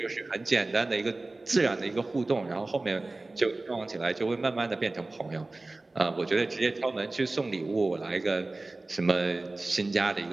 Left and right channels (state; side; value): quieter; left; 3.1 dB